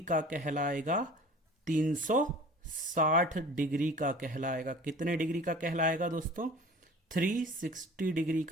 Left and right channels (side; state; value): both; normal; correlation 0.44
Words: का कहलाएगा? 360 डिग्री का कहलाएगा। कितने डिग्री का कहलाएगा दोस्तों? 360 डिग्री